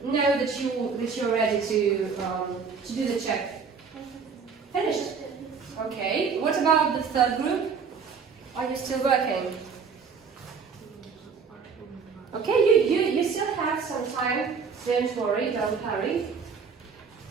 know that you're ready to do the check. Finished. Okay. What about the third group? Are you still working? Okay, you still have some time. Don't worry, don't hurry.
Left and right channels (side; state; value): left; quieter; 5.7 dB